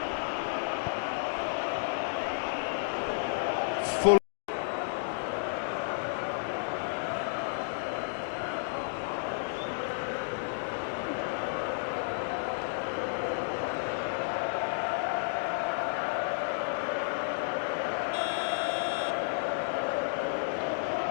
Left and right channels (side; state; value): right; silent; digital silence